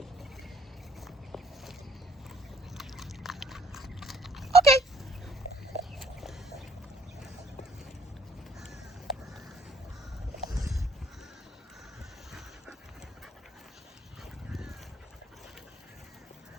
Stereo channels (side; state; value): both; normal; correlation 0.63